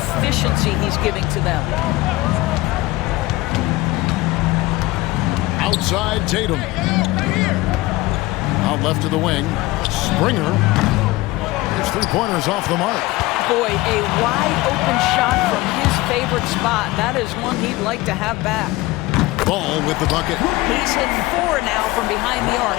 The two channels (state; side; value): quieter; right; 19.7 dB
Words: he's giving to them. Outside Tatum. Out left to the wing. Springer. His 3-pointers off the mark. Boy, a wide open shot from his favorite spot. That is one he'd like to have back. Ball with the bucket. He's hit 4 now from behind the arc.